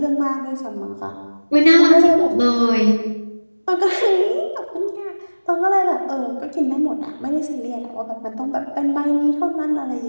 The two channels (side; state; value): both; inverted; correlation -1.00